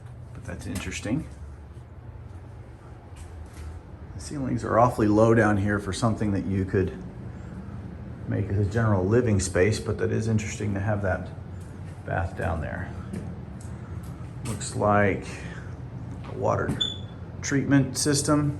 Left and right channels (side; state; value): both; identical; correlation 1.00